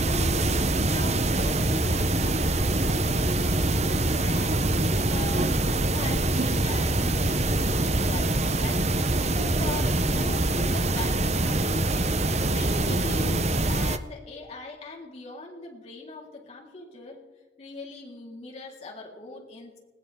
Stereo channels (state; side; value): normal; both; correlation 0.65